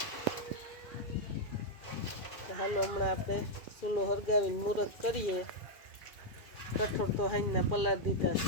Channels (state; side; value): late; right; 2.4 ms